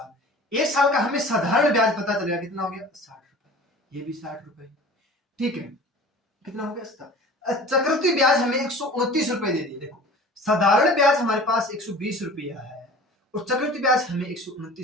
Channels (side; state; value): both; normal; correlation 0.42